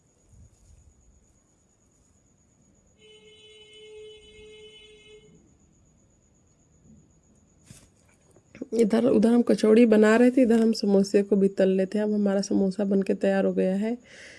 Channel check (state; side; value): identical; both; correlation 1.00